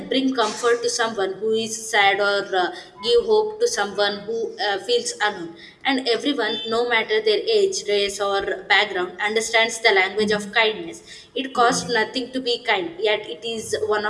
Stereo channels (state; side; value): identical; both; correlation 1.00